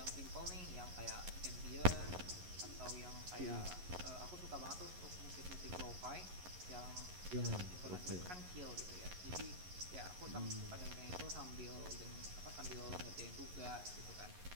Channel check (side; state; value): left; late; 11 ms